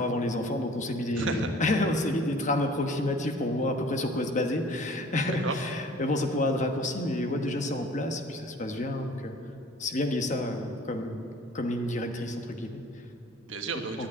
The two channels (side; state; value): both; normal; correlation 0.49